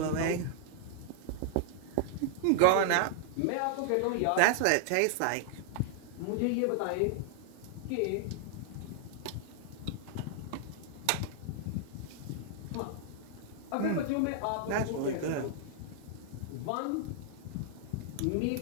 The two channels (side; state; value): both; different; correlation 0.00